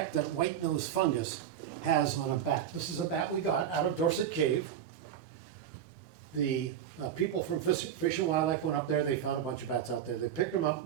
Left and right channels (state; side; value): quieter; left; 9.5 dB